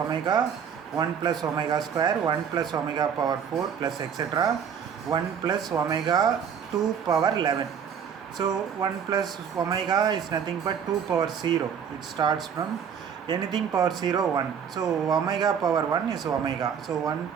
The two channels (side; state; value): left; quieter; 7.6 dB